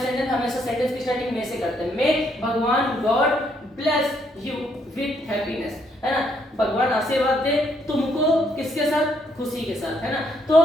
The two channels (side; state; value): both; normal; correlation 0.72